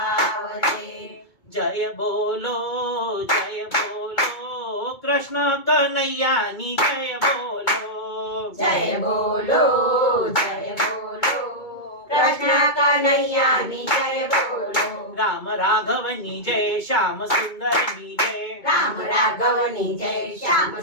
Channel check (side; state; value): right; late; 2.2 ms